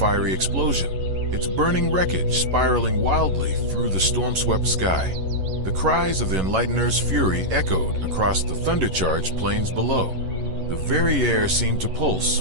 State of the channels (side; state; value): left; late; 11 ms